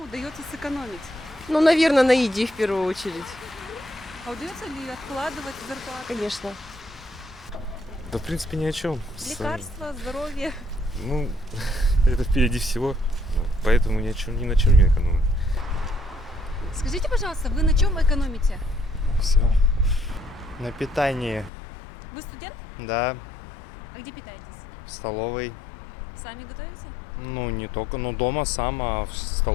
удается сэкономить? Ну, наверное, на еде в первую очередь. А удается ли откладывать зарплату? Конечно. Да, в принципе, ни о чем. Лекарства, здоровье. Ну, это впереди всего, поэтому ни на чем не экономим. Скажите, пожалуйста, вы на чем экономите? Все. На питании, Вы студент? да, А где питаетесь? в столовой. Сами готовите? Ну, не только, ну, дома сам, а в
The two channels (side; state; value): right; drops out; at 21.5 s